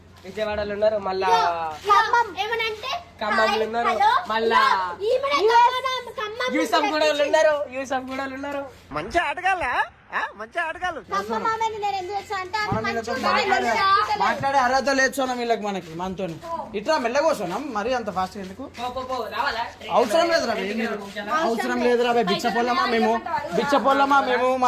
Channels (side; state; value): both; identical; correlation 1.00